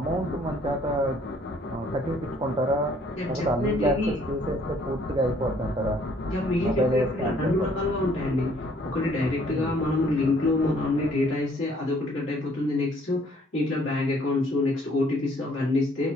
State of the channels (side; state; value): both; normal; correlation 0.62